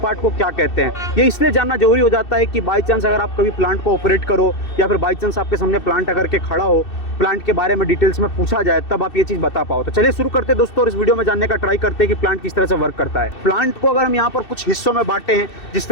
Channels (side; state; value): right; late; 2.7 ms